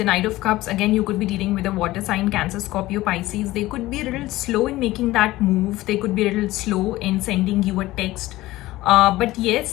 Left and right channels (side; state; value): right; quieter; 17.5 dB